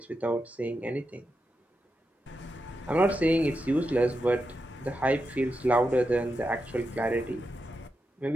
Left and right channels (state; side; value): normal; both; correlation 0.87